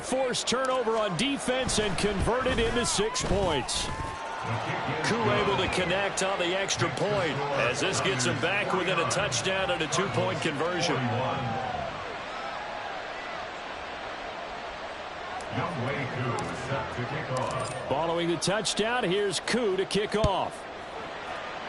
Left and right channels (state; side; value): identical; both; correlation 1.00